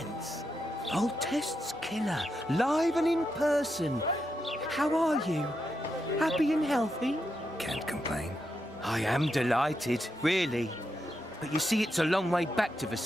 Voltest's killer, live and in person. How are you? Happy and healthy? Can't complain. I am delighted, really. But you see, it's a long way back to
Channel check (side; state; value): both; normal; correlation 0.84